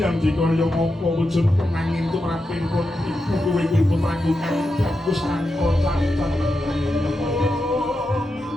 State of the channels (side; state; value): both; normal; correlation 0.88